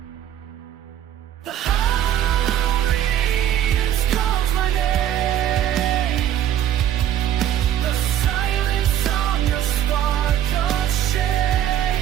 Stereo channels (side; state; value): left; quieter; 11.0 dB